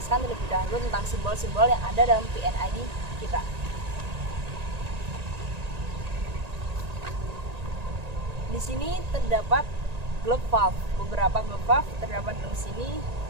terlebih dahulu tentang simbol-simbol yang ada dalam PNID kita. Di sini terdapat globe valve. Beberapa globe valve terdapat di sini,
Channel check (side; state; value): left; late; 1.9 ms